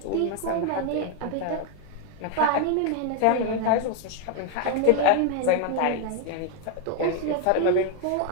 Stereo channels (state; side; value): different; both; correlation 0.01